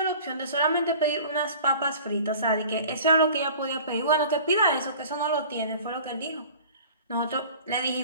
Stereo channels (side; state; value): both; inverted; correlation -0.45